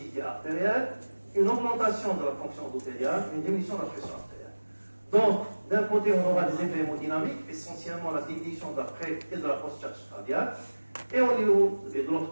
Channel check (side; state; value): both; inverted; correlation -1.00